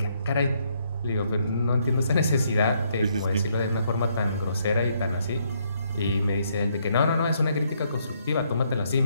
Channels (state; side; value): inverted; both; correlation -0.72